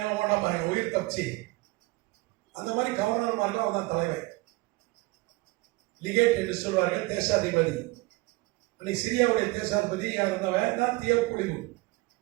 ஓடா பாருங்க, உயிர் தப்பிச்சு. அந்த மாதிரி கவர்னர் மார்க்க அவன் தான் தலைவர். லிகேட் என்று சொல்வார்கள், தேசாதிபதி. அன்னைக்கு சிரியாவுடைய தேசாதிபதி யார் இருந்தவன் தான் தீய பொழிவு.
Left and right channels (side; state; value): left; quieter; 23.1 dB